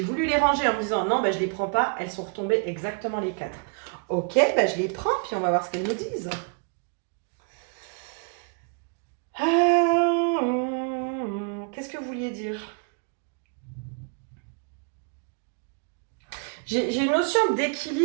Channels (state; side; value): quieter; left; 38.7 dB